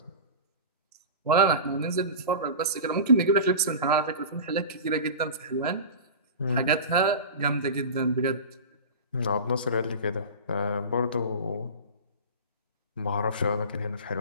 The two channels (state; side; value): inverted; both; correlation -0.31